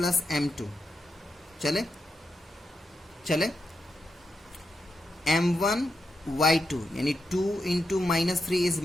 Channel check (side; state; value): both; normal; correlation 0.86